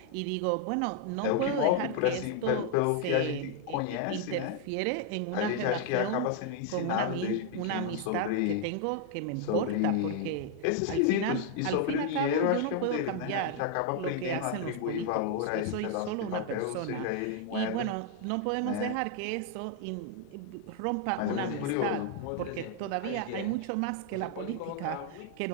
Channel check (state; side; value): different; both; correlation 0.00